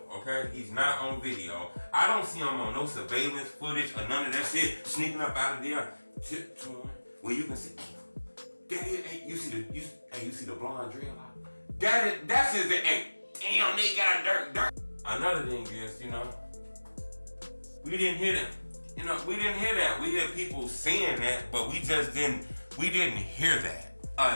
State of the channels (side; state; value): both; inverted; correlation -1.00